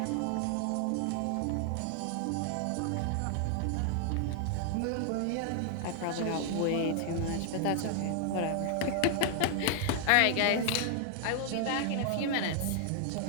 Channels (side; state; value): both; different; correlation 0.00